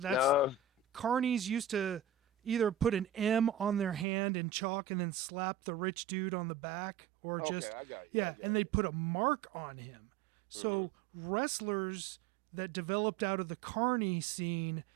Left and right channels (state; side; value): drops out; left; at 4.0 s